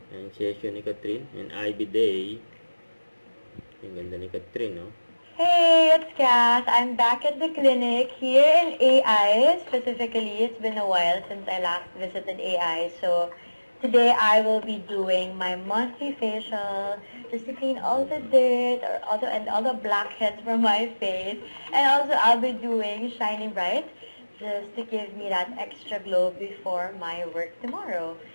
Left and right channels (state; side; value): inverted; both; correlation -1.00